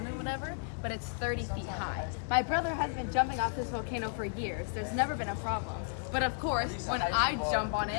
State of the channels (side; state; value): right; silent; digital silence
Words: and whatever, but it's 30 feet high. My brother has been jumping off this volcano for years. There's never been a problem. But of course, when I jump